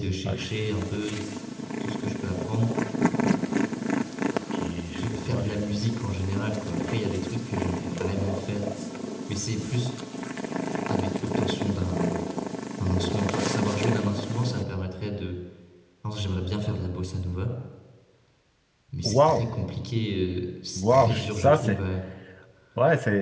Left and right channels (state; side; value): identical; both; correlation 1.00